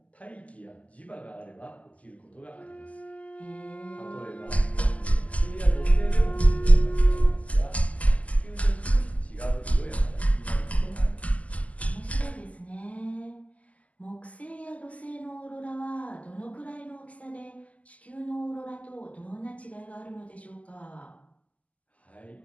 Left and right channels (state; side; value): late; right; 0.070 ms